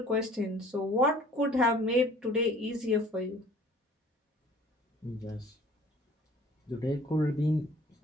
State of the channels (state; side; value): normal; both; correlation 0.51